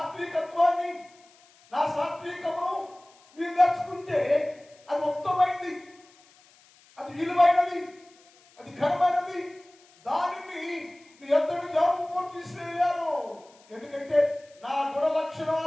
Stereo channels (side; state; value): left; noise; hiss, 29 dB below the sound